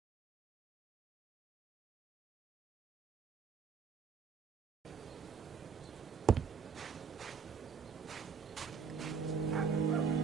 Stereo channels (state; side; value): quieter; left; 6.0 dB